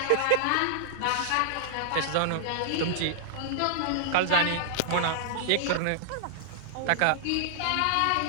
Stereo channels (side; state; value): both; different; correlation -0.01